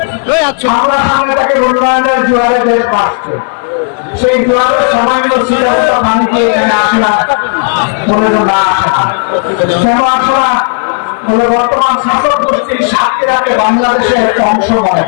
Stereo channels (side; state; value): right; silent; 59 dB below the other